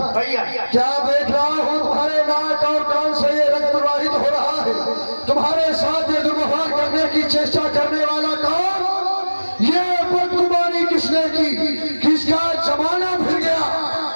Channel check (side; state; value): both; inverted; correlation -1.00